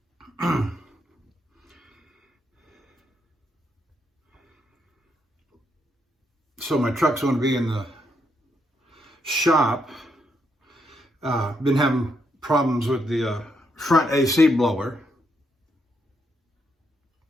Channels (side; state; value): both; normal; correlation 0.78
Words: So my truck's going to be in the shop. Been having problems with the front AC blower.